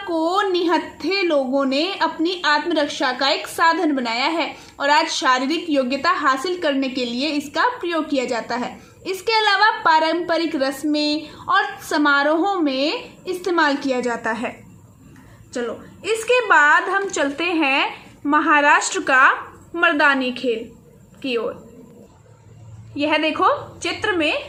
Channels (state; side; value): identical; both; correlation 1.00